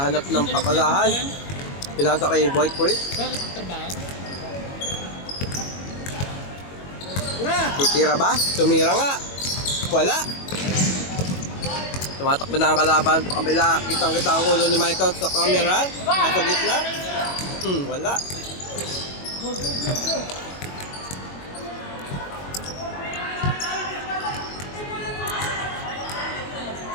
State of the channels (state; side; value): late; right; 22 ms